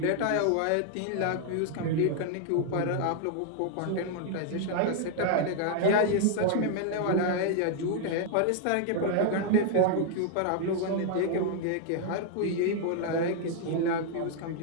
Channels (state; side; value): different; both; correlation 0.00